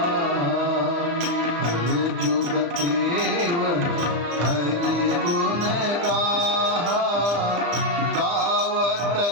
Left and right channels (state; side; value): late; left; 35 ms